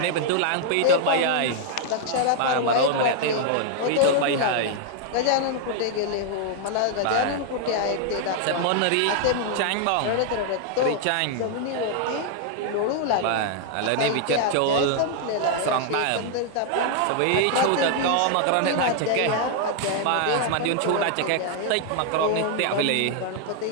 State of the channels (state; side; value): different; both; correlation 0.00